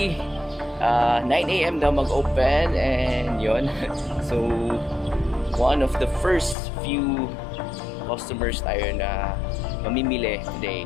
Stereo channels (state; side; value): drops out; right; at 6.6 s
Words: 9 a.m. daw mag-open and yun. So one of the first few customers tayo na mamimili today.